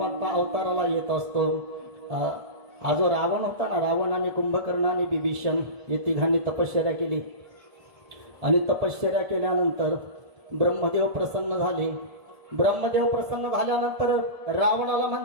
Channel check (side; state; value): left; late; 1.7 ms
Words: अवताराला येत असतो. हा जो रावण होता ना, रावणाने कुंभकर्ण आणि बिभीषण हे तिघांनी तपश्चर्या केली. आणि तपश्चर्या केल्यानंतर ब्रह्मदेव प्रसन्न झाले. ब्रह्मदेव प्रसन्न झाल्यानंतर रावणाला